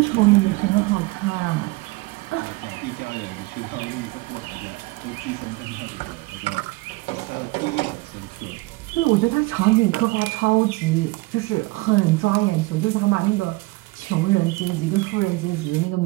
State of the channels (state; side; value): quieter; left; 22.6 dB